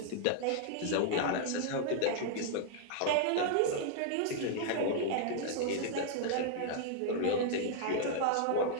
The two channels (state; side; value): different; both; correlation -0.01